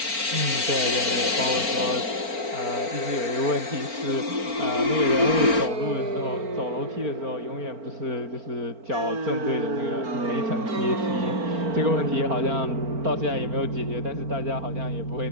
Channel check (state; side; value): late; left; 4.4 ms